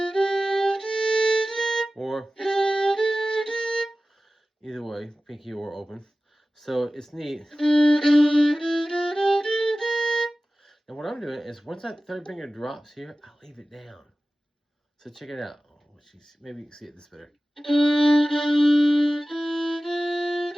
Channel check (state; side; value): normal; both; correlation 0.96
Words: Or, either way, pinky or open. So it's neat. And what I'm doing is once that third finger drops here, I leave it down. So check it out. Oh, maybe you can see it this better.